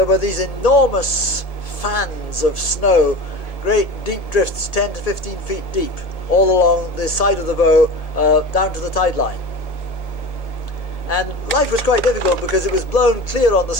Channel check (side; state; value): right; late; 1.7 ms